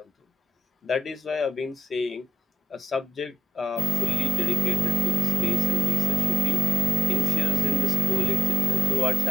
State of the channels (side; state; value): both; normal; correlation 0.84